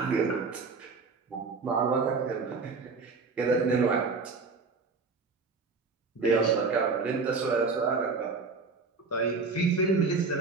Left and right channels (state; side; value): quieter; left; 4.4 dB